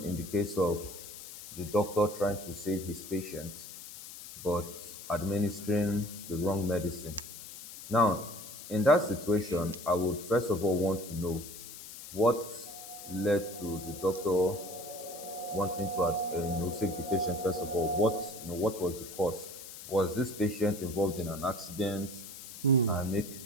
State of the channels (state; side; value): noise; left; hiss, 13 dB below the sound